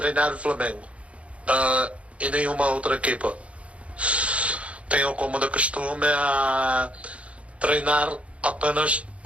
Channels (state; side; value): late; left; 0.063 ms